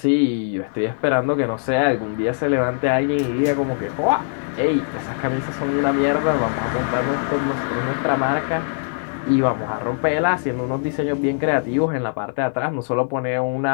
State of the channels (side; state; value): right; silent; 61 dB below the other